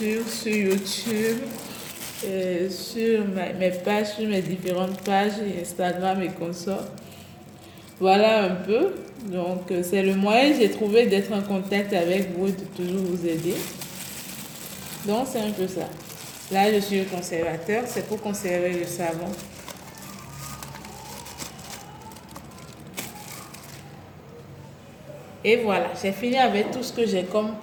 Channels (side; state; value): both; identical; correlation 1.00